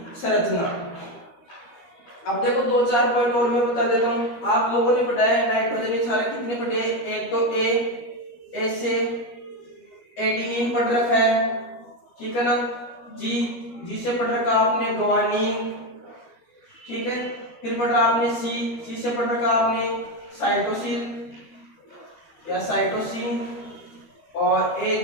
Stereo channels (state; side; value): late; right; 13 ms